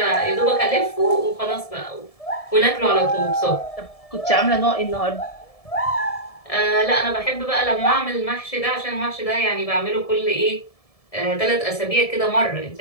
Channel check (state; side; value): late; right; 1.7 ms